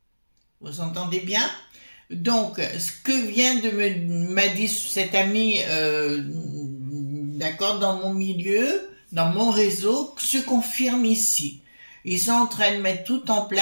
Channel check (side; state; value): both; inverted; correlation -1.00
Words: Vous entendez bien? Donc, ce que vient m'a dit cet ami, d'accord, dans mon milieu, dans mon réseau, se confirme ici. Ils sont en train de mettre tout en